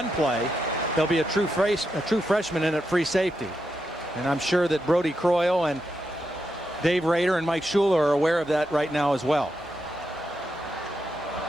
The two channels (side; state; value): both; normal; correlation 0.85